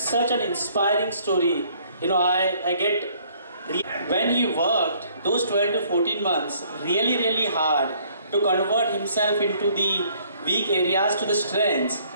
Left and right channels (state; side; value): inverted; both; correlation -0.62